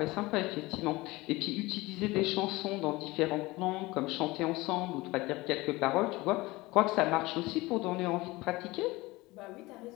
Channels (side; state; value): right; quieter; 21.0 dB